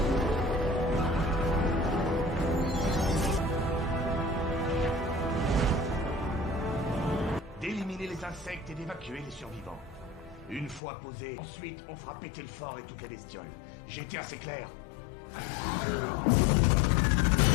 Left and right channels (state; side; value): drops out; right; at 10.8 s